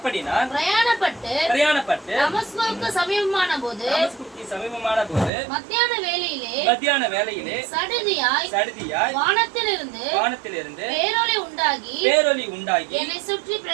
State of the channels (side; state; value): left; drops out; at 5.3 s